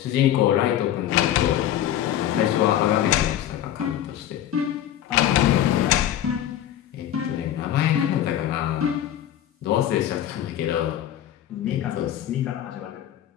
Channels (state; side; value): quieter; right; 11.5 dB